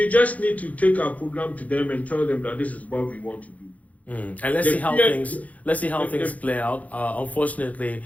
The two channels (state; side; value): late; right; 0.071 ms